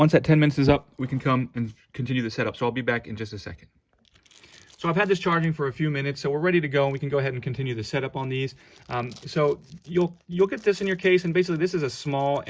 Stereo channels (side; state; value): both; identical; correlation 1.00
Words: that 10 minutes is up, we can come and continue the setup. So I'll be back in just a second. So I've had this charging for a few minutes, so we're ready to go, and we can go ahead and continue the setup on these. So you'll get this in your case, and basically this is a small